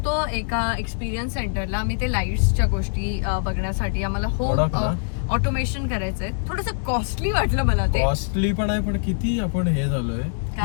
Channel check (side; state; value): right; silent; digital silence